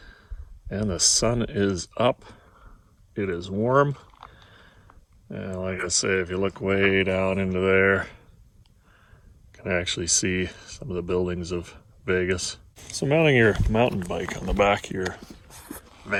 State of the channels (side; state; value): both; identical; correlation 1.00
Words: And the sun is up. It is warm. And like I say, if you look way down into there, you can actually see some of the buildings of Vegas. So mounting your mountain bike on the back of your